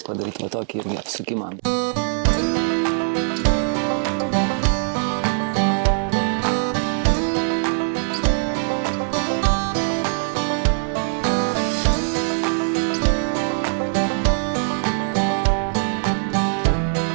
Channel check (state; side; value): silent; left; 65 dB below the other